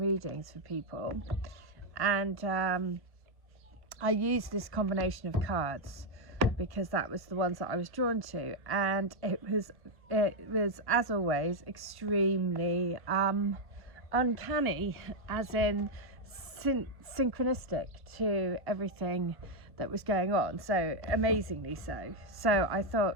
for people, and I used this combination of cards because that was the ones that I was drawn to, and it was as always extremely uncanny, as in synchronistic to everything that was going on, so amazingly so. So I thought,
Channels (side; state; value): left; late; 1.1 ms